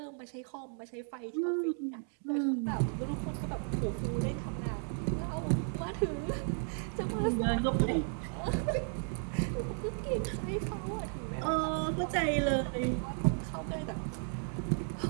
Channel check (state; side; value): silent; left; 55 dB below the other